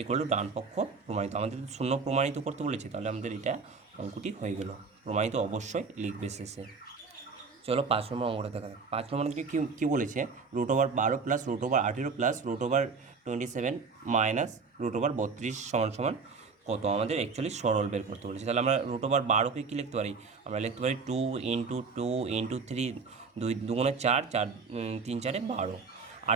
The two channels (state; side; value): quieter; left; 4.9 dB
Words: ইকুয়াল টু ডান পক্ষ প্রমাণিত। আমাদের 0 প্রমাণিত করতে বলেছে, তাহলে আমাদের এটা অঙ্কটি হয়ে গেল। প্রমাণিত অবশ্যই লিখবে শেষে। চলো 5 নম্বর অঙ্কটা দেখা যাক। 5 নম্বর অঙ্কে কী বলেছে, √12 প্লাস √18 প্লাস √27 মাইনাস √32 সমান সমান কত? আমাদের অ্যাকচুয়ালি সরল বের করতে বলেছে। তাহলে আমরা √12কে কী লিখতে পারি? আমরা লিখতে পারি 2 × 2 × 3, 2 2 4, 4 3 4 12।